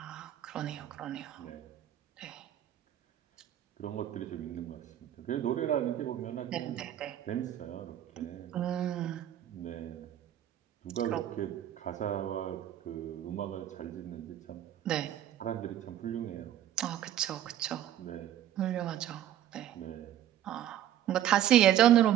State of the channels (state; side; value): quieter; left; 11.5 dB